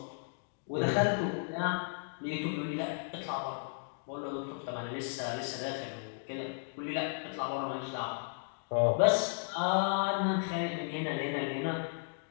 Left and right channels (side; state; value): right; silent; digital silence